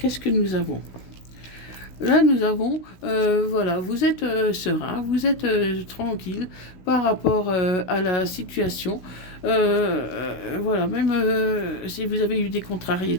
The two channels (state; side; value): late; right; 16 ms